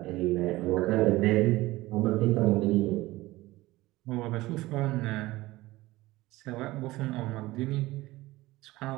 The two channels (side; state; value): left; quieter; 18.7 dB